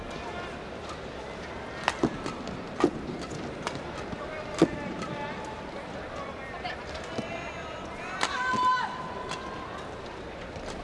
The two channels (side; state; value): both; identical; correlation 1.00